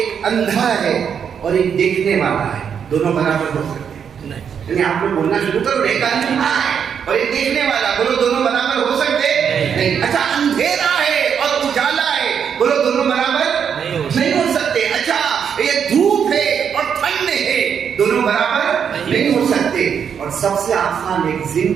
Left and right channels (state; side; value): quieter; left; 7.5 dB